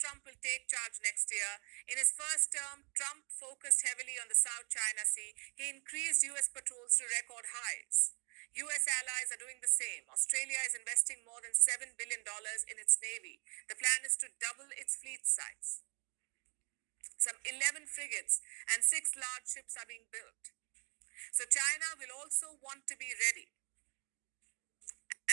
Trump will take charge next year. In his first term, Trump focused heavily on the South China Sea. He increased U.S. patrols to record highs. U.S. allies are doing the same. Australia is investing more than $7 billion in its navy. The plan is to double its fleet size. Some 11 frigates and 6 large ships are being built. So China will also want to be ready.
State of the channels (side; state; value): left; quieter; 34.0 dB